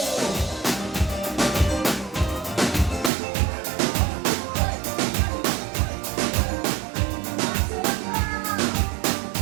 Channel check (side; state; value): left; drops out; at 3.1 s